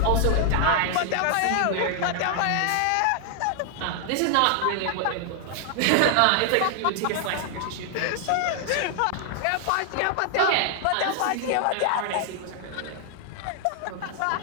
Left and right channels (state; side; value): different; both; correlation 0.00